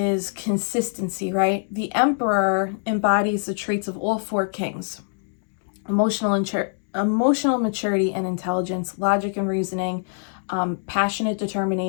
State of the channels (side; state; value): right; silent; 63 dB below the other